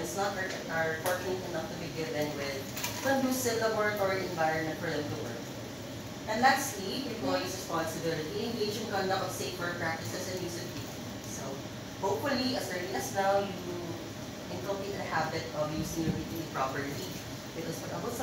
not are fortunate enough to be given with conducive laboratory environment for them to work. And lastly, employees' responsibility, engage in conduct of safer practices and use of PPE. So, hopefully, as early as now, you inculcate a habit of using your PPE properly. Because pag abot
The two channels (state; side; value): identical; both; correlation 1.00